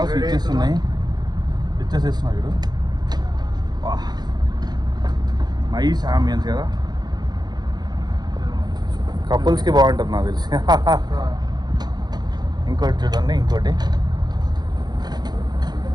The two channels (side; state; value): left; late; 0.20 ms